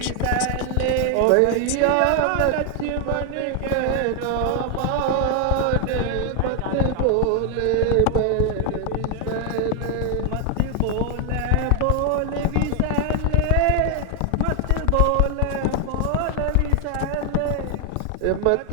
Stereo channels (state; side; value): different; both; correlation 0.00